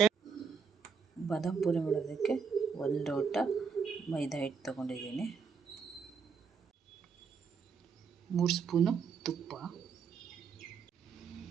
ಬಾದಾಮ್ ಪೂರಿ ಮಾಡೋದಕ್ಕೆ 1 ಲೋಟ ಮೈದಾ ಹಿಟ್ಟು ತೊಗೊಂಡಿದ್ದೀನಿ, 3 ಸ್ಪೂನು ತುಪ್ಪ,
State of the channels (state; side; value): quieter; left; 6.0 dB